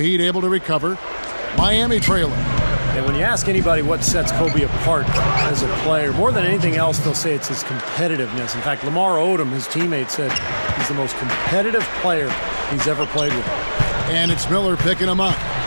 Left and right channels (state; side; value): inverted; both; correlation -1.00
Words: able to recover. Miami trailing. And when you ask anybody what sets Kobe apart as a player, more than anything else, they'll say it's his competitiveness. In fact, Lamar Odom, his teammate, said he's the most competitive player he's ever played with. And it's Miller picking him up.